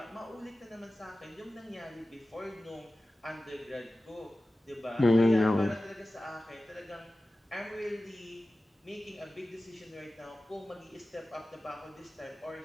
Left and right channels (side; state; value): both; normal; correlation 0.95